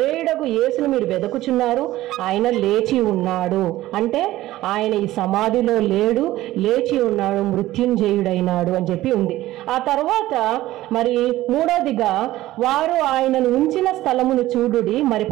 యేసును మీరు వెదకుచున్నారు, ఆయన లేచి ఉన్నాడు. అంటే ఆయన ఈ సమాధిలో లేడు, లేచి ఉన్నాడు, మృత్యుంజయుడైనాడు అని చెప్పి ఉంది. ఆ తర్వాత మరి 3వదిగా వారు ఆయనను ఉంచిన స్థలమును చూడుడి. మరి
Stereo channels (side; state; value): left; quieter; 15.8 dB